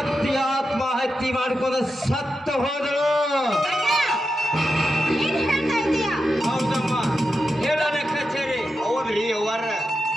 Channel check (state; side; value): normal; both; correlation 0.89